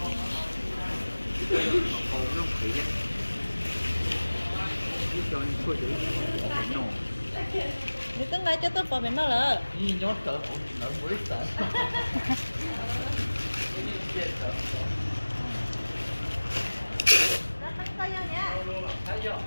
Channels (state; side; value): inverted; both; correlation -1.00